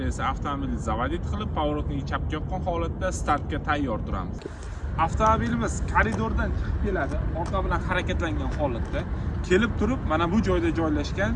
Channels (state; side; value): identical; both; correlation 1.00